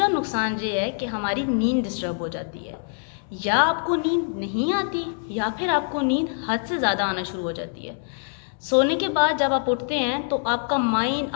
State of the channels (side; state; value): right; silent; digital silence